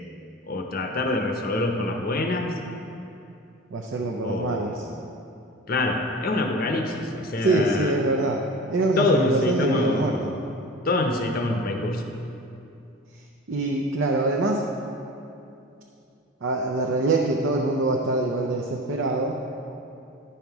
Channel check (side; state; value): both; normal; correlation 0.35